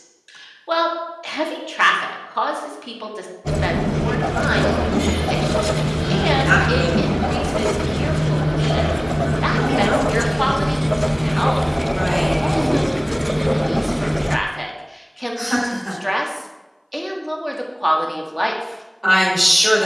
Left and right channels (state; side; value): identical; both; correlation 1.00